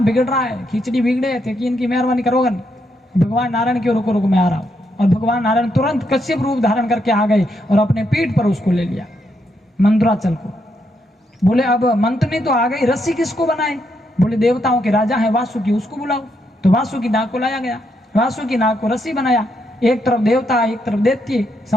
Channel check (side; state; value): both; normal; correlation 0.79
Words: बिगड़ रहा है, खिचड़ी बिगड़े थे कि इनकी मेहरबानी करोगे नहीं। भगवान नारायण क्यों रुको रुको मैं आ रहा हूं। और भगवान नारायण तुरंत कश्यप रूप धारण करके आ गए और अपने पीठ पर उसको ले लिया मंदराचल को। बोले अब मंथनी तो आ गई, रस्सी किसको बनाए? बोले देवताओं के राजा है वासुकी, उसको बुलाओ। तो वासुकी नाग को लाया गया, वासुकी नाग को रस्सी बनाया, एक तरफ देवता एक तरफ दैत्य,